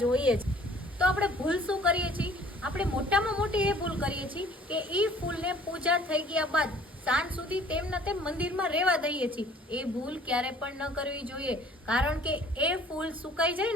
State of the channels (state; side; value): normal; both; correlation 0.53